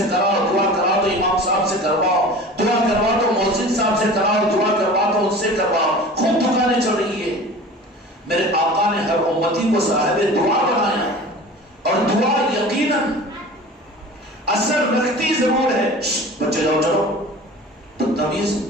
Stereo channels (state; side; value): normal; both; correlation 0.39